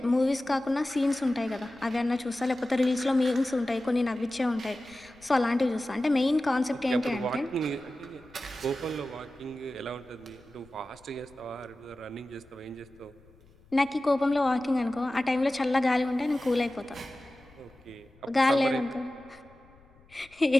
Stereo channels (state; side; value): noise; left; rumble, 27 dB below the sound